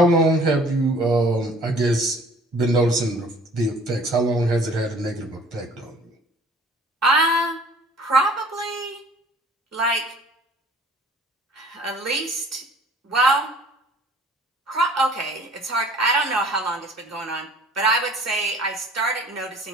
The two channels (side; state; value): both; normal; correlation 0.52